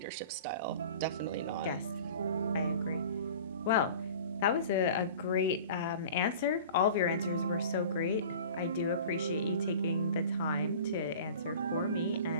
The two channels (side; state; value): both; inverted; correlation -0.41